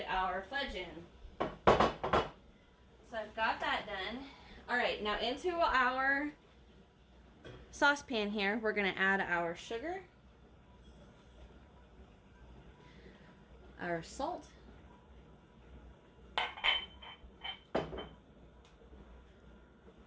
our fudge in. So I've got that done. Alright, now into our saucepan here, we're going to add our sugar, our salt, go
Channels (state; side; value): identical; both; correlation 1.00